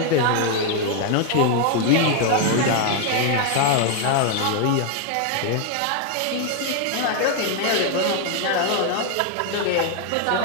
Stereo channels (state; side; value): different; both; correlation 0.00